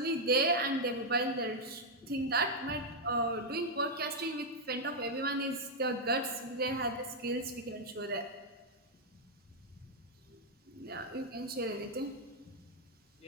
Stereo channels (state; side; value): normal; both; correlation -0.02